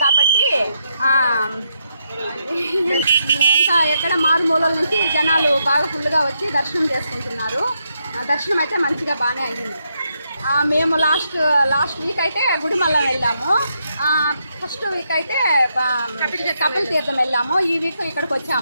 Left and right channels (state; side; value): inverted; both; correlation -0.80